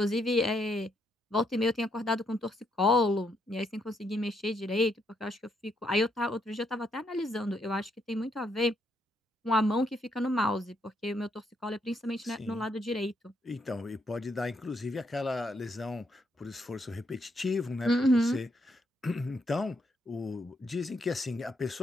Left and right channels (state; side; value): normal; both; correlation 0.76